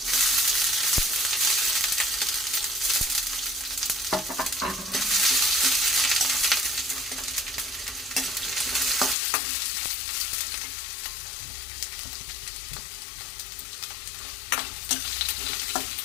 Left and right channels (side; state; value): right; drops out; at 9.2 s